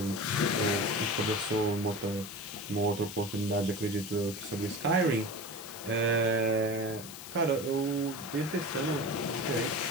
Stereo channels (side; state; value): left; noise; hiss, 13 dB below the sound